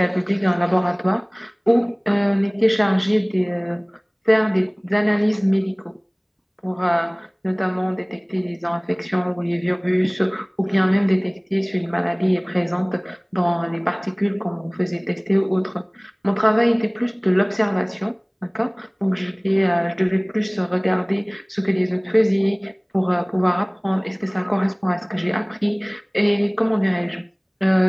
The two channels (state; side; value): identical; both; correlation 1.00